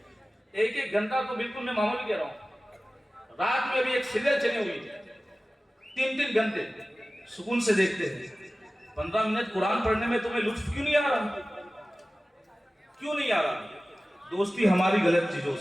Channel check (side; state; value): both; normal; correlation 0.97